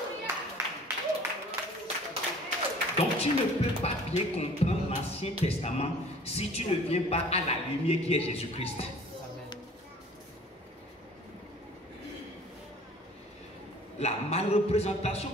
Donc tu ne peux pas bien comprendre l'Ancien Testament si tu ne viens pas à la lumière qui est Jésus-Christ. La malreprésentation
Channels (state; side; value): normal; both; correlation 0.50